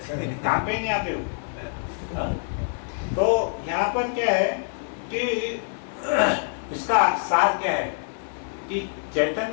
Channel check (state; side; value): silent; right; 61 dB below the other